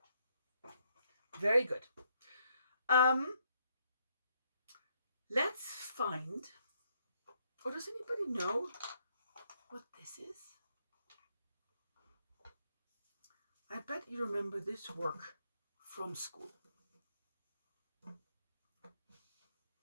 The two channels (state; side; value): inverted; both; correlation -0.73